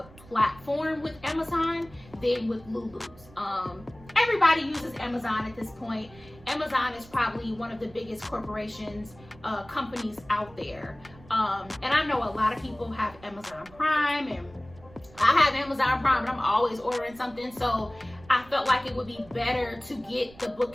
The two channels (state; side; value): noise; right; rumble, 22 dB below the sound